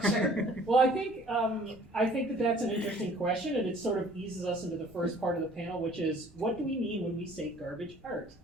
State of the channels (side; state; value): both; normal; correlation 0.53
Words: Well, I think that that's an interesting question, and it sort of eases us into the first part of the panel, which is, what do we mean when we say garbage art?